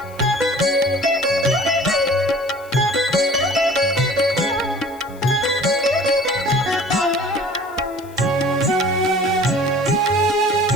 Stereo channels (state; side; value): noise; left; hiss, 25 dB below the sound